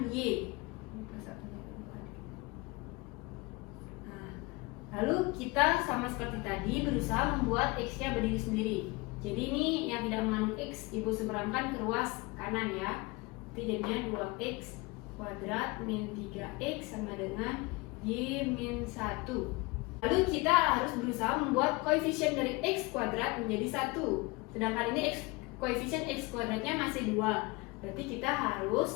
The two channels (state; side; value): quieter; right; 24.8 dB